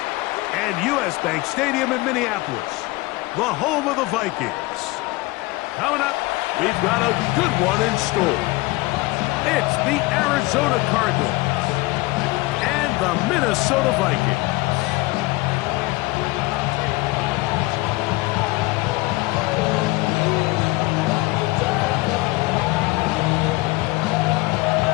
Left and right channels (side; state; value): right; quieter; 21.7 dB